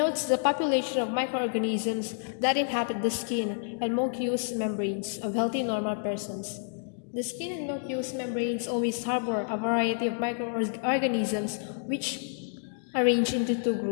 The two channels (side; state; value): right; silent; digital silence